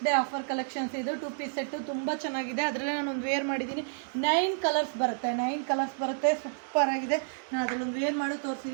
day offer collections ಇದು 2 piece set ತುಂಬ ಚೆನ್ನಾಗಿದೆ. ಅದರಲ್ಲೇ ನಾನೊಂದು ವೇರ್ ಮಾಡಿದ್ದೀನಿ. 9 ಕಲರ್ಸ್ ಬರುತ್ತೆ. ಸೂಪರ್ ಆಗಿದೆ. ನಾನು ಅದರಲ್ಲೊಂದು ವೇರ್ ಮಾಡಿ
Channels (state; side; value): silent; left; digital silence